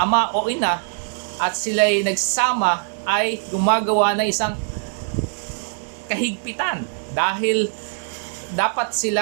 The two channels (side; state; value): left; silent; 59 dB below the other